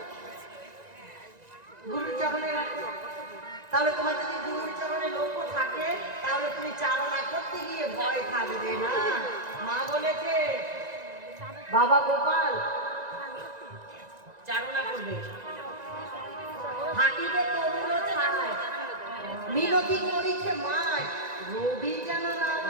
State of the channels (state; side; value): late; left; 1.9 ms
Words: গুরুর চরণে রাখবে। তাহলে তোমার যদি গুরুর চরণে লক্ষ্য থাকে, তাহলে তুমি চারণা করতে গিয়ে ভয় থাকবে না। মা বলেছে বাবা গোপাল চারণা করবে, থাকিবে তরুণ ছায়, মিনতি করিছে মায়, রবি যেন না